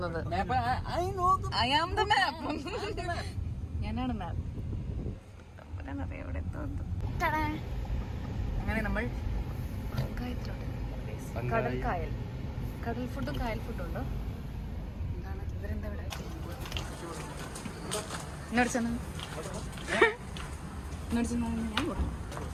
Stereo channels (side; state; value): both; identical; correlation 1.00